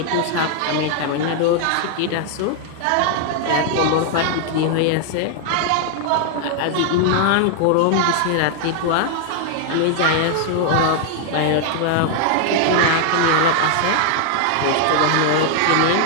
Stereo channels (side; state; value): both; different; correlation 0.00